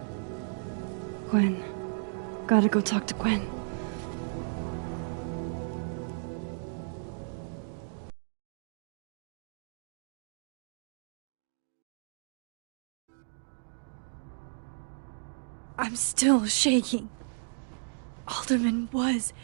Gwen. Gotta go talk to Gwen. I'm still shaking. Alderman was,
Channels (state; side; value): silent; left; digital silence